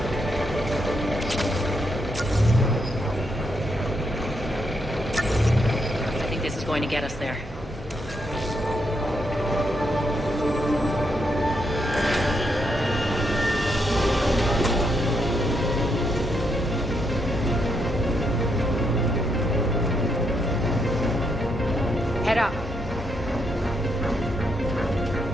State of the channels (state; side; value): normal; both; correlation 0.79